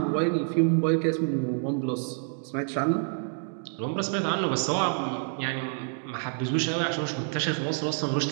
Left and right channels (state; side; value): silent; left; 60 dB below the other